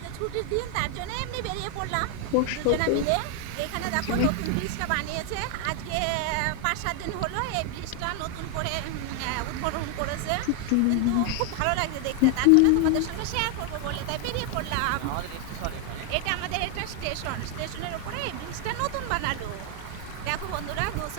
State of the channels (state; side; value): different; both; correlation 0.01